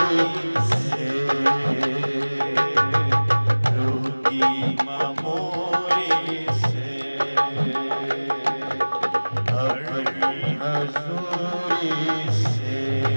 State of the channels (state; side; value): inverted; both; correlation -1.00